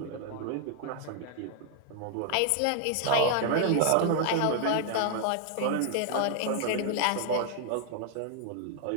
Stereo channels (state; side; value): different; both; correlation 0.00